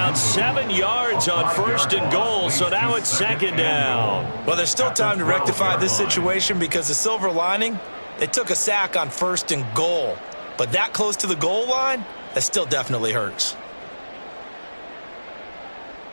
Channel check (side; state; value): both; inverted; correlation -1.00